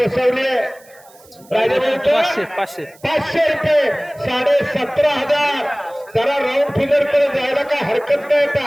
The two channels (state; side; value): noise; right; hiss, 27 dB below the sound